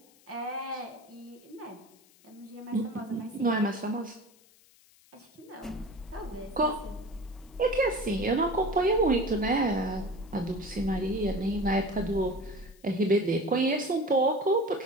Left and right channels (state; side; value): noise; left; hiss, 29 dB below the sound